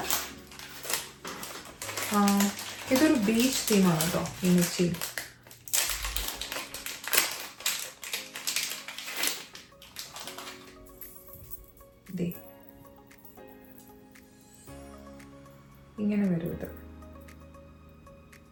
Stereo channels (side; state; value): both; identical; correlation 1.00